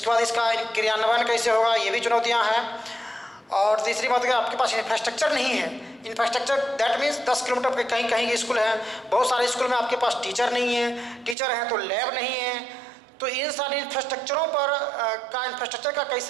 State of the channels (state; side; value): drops out; left; at 11.4 s